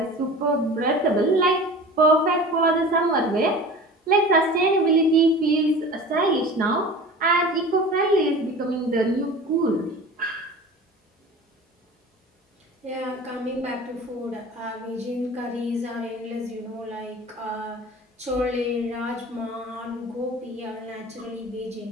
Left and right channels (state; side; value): normal; both; correlation 0.38